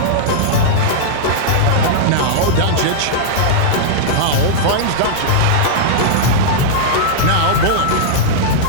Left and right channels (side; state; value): both; different; correlation -0.02